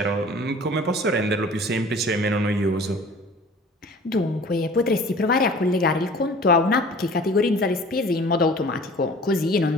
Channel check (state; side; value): normal; both; correlation 0.46